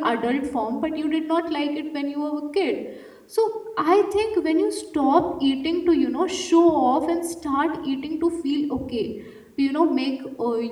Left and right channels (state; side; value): identical; both; correlation 1.00